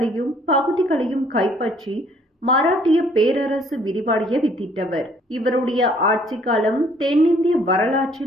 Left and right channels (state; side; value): normal; both; correlation 0.61